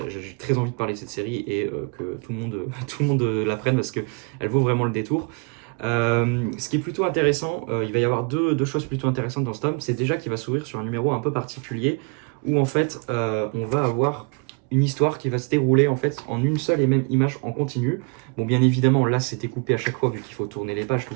très envie de parler de cette série et que tout le monde la prenne parce que elle vaut vraiment le détour. Ce qui est plutôt intéressant, il va y avoir deux choses plutôt intéressantes dans ce tome. C'est déjà qu'il va s'ouvrir sur un numéro un peu particulier où en fait on va avoir une histoire qui va se dérouler en fait en une seule et même image en continu. Bon, bien évidemment là c'était coupé à chaque fois vu qu'il faut tourner les pages, tout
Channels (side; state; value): left; quieter; 34.2 dB